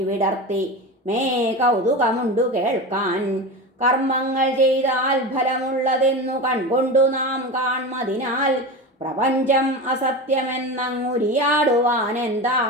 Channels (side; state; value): both; normal; correlation 0.25